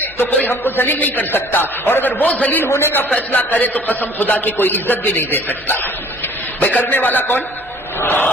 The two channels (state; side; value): normal; both; correlation 0.53